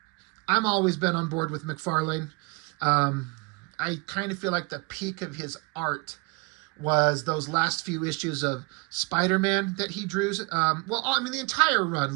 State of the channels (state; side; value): quieter; left; 29.9 dB